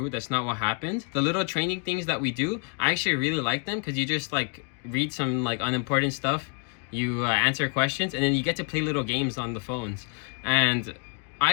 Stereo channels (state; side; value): quieter; right; 39.8 dB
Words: That's not what happened. The little training things that we do, I actually really like them because you just like read some like unimportant stuff. You answer questions, and then you get to play little games on the phones. And